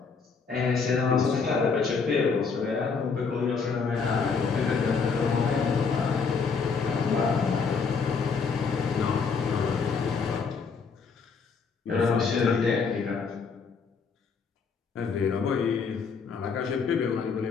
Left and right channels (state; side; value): quieter; right; 5.3 dB